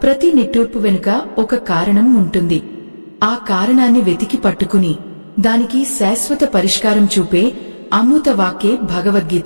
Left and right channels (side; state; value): both; inverted; correlation -1.00